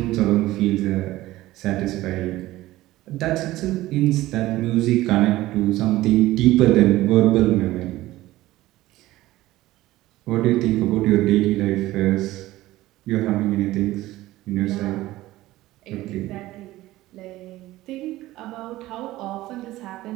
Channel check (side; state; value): left; quieter; 16.7 dB